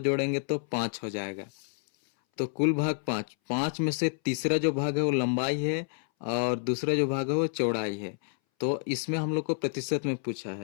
तो 5 हो जाएगा। तो कुल भाग 5। 5 में से तीसरा जो भाग है वो लंबाई है और दूसरा जो भाग है वो चौड़ाई है। तो इसमें हम लोग को प्रतिशत में पूछा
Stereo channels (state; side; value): silent; right; 59 dB below the other